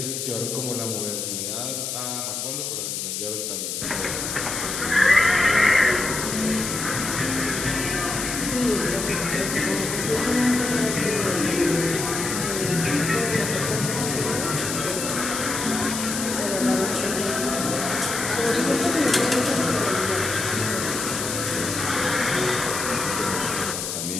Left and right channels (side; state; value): left; noise; hiss, 4 dB below the sound